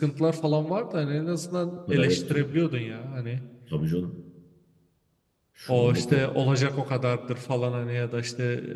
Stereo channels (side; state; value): both; identical; correlation 1.00